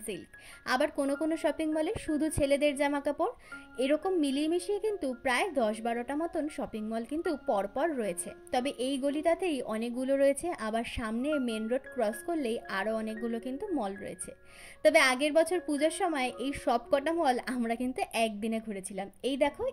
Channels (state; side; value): identical; both; correlation 1.00